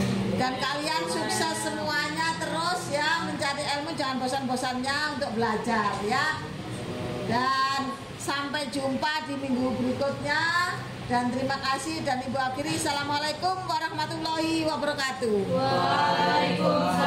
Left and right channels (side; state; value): both; identical; correlation 1.00